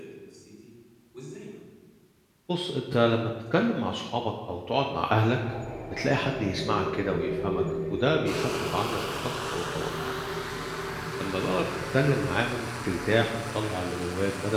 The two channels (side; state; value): both; identical; correlation 1.00